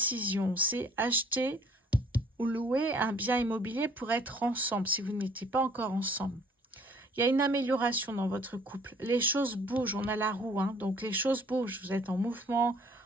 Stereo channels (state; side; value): normal; both; correlation 0.57